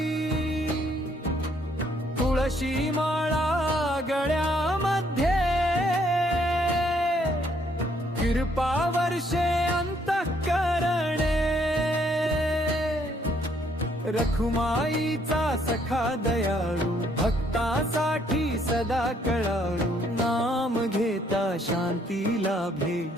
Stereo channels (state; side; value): normal; both; correlation 0.68